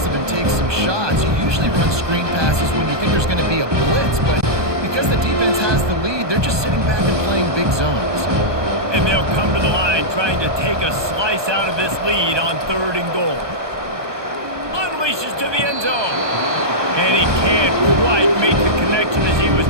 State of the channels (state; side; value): late; left; 1.2 ms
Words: and take some shots. You usually run screen passes when you think there's going to be a blitz, but because the defense has the lead, they're just sitting back and playing big zones. And they'll come to the line trying to take a slice out of this lead on 3rd and goal. Unleashes to the end zone. And he can't quite make the connection as he was